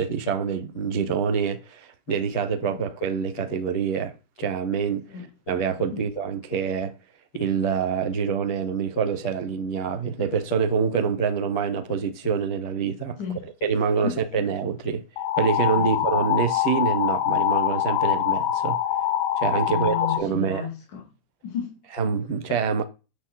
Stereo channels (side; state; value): right; late; 9.3 ms